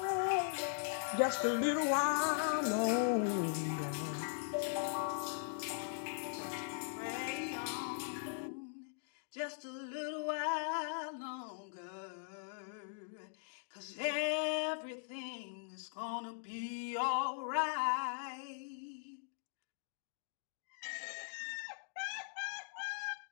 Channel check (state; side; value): silent; right; digital silence